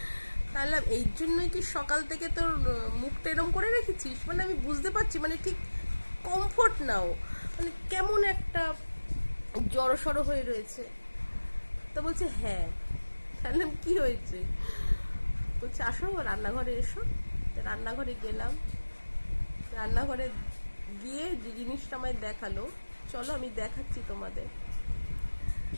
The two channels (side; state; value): both; inverted; correlation -1.00